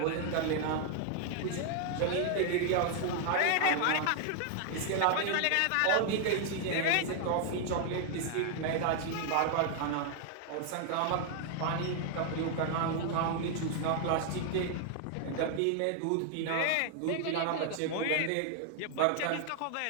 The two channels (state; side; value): different; both; correlation 0.00